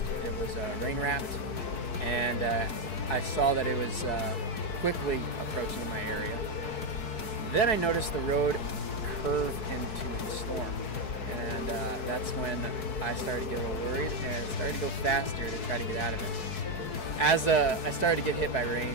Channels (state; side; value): late; right; 4.6 ms